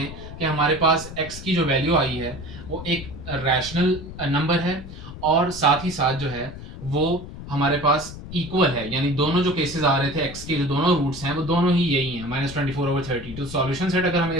कि हमारे पास x की जो वैल्यू आई है वो एक रैशनल नंबर है, और साथ ही साथ जो है वो हमारे पास इक्वल है, यानी दोनों जो केसेस आ रहे थे x के जो दोनों रूट्स हैं वो दोनों ही यही हैं -24/32। तो सॉल्यूशन सेट अगर हमें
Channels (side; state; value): left; noise; rumble, 12 dB below the sound